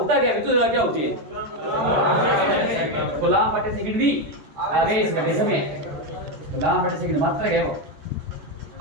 क्या? विद्युत धारा क्या होती है? कूलाम बटे सेकंड भी आवेश बटे समय। कूलाम बटे सेकंड मात्रक है वो।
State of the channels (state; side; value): late; left; 14 ms